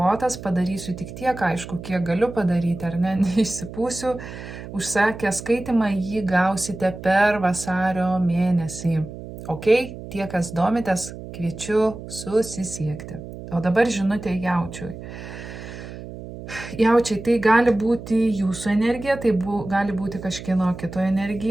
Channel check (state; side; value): noise; right; hum, 12 dB below the sound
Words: padarysiu tik tiek, aišku, kiek galiu padaryti, ar ne, neišsipūsiu. Užsakę skaitimą jį gausite per vasario mėnesį. Ok, tie, kas domitės, kviečiu susisiekti. O dabar žinutė jaučiui. Jaučiai, tai gali būti jūsų energija, tai gali būti kažkieno kito